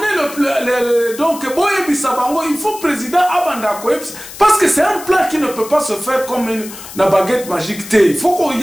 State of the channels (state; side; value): noise; left; hiss, 14 dB below the sound